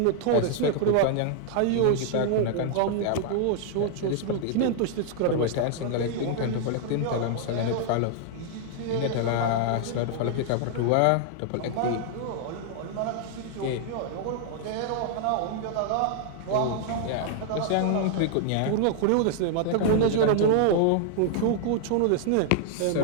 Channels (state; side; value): different; both; correlation -0.01